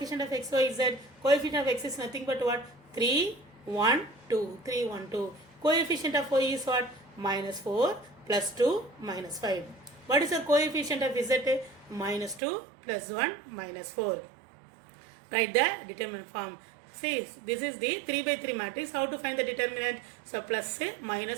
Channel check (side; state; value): left; drops out; at 12.4 s